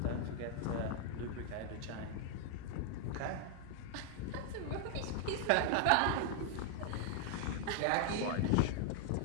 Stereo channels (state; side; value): different; both; correlation 0.00